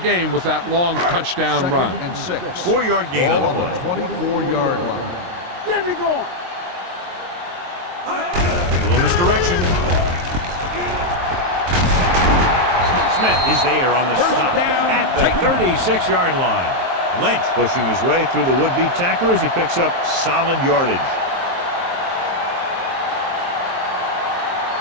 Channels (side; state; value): left; late; 23 ms